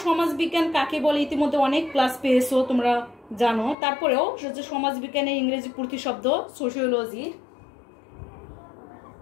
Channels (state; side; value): drops out; right; at 3.8 s